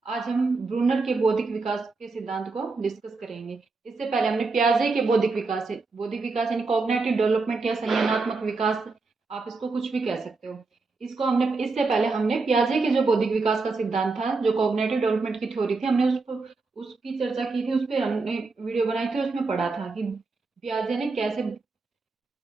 आज हम Brunner के बौद्धिक विकास के सिद्धांत को डिस्कस करेंगे। इससे पहले हमने पियाजे के बौद्धिक विकास यानी कॉग्निटिव डेवलपमेंट या संज्ञानात्मक विकास, आप इसको कुछ भी कह सकते हो। इससे पहले हमने पियाजे के जो बौद्धिक विकास का सिद्धांत था, जो कॉग्निटिव डेवलपमेंट की थ्योरी थी, हमने उसकी चर्चा की थी। उस पर हमने वीडियो बनाई थी, उसमें पढ़ा था कि पियाजे ने कैसे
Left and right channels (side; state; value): left; quieter; 4.0 dB